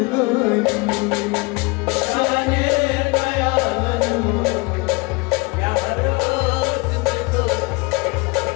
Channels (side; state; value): right; quieter; 26.8 dB